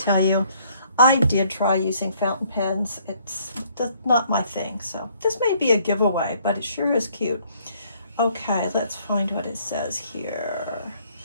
you, I did try using fountain pens. That's not my thing, so this may be a giveaway, but it sure is cute. Okay, let's find what it says here.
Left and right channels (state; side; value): inverted; both; correlation -0.64